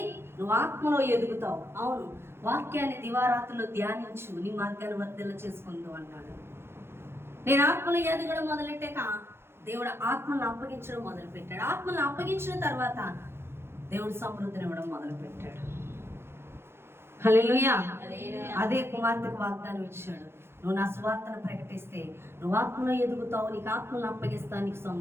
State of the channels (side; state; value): left; late; 0.12 ms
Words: నువ్వు ఆత్మలో ఎదుగుతావు. అవును, వాక్యాన్ని దివారాత్రులు ధ్యానించు, నీ మార్గాన్ని వర్ధిల్ల చేసుకుంటూ అన్నాడు. నేను ఆత్మలో ఎదగడం మొదలెట్టాక దేవుడు ఆత్మను అప్పగించడం మొదలుపెట్టాడు. ఆత్మను అప్పగించిన తర్వాత దేవుడు సమృద్ధిని ఇవ్వడం మొదలుపెట్టాడు. హల్లెలూయా. అదే కుమార్తెకు వాగ్దానం ఇచ్చాడు. నువ్వు నా సువార్తను ప్రకటిస్తే నువ్వు ఆత్మలో ఎదుగుతావు, నీకు ఆత్మను అప్పగిస్తాను, నీకు